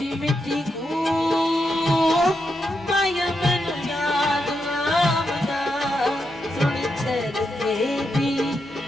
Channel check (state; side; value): normal; both; correlation 0.84